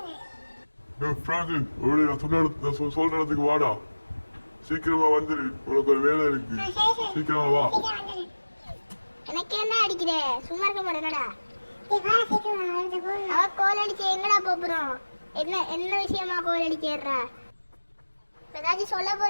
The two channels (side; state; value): both; inverted; correlation -1.00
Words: சொல்ற இடத்துக்கு வாடா, சீக்கிரமா வந்துரு, உனக்கு ஒரு வேலை இருக்கு, சீக்கிரமா வா. எனக்கு என்ன அடிக்கிற, சும்மா இருக்க மாட்டேனடா. அவ கோல் அடிச்சு எங்கடா போறோம்? என்ன என்ன விஷயமா கோல் அடிக்கிறா? ஏதாச்சும் சொல்ல